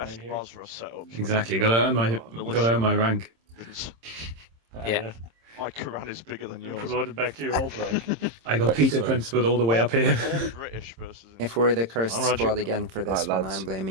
Right here. Basra set up. Exactly. Gotta earn my rank. Yeah. My Quran is bigger than You're yours. promoted back to your old rank. I got Peter Principle all the way up here. British versus. If we're the cursed I'm Roger. squad again for this one, I'm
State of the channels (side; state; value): left; late; 26 ms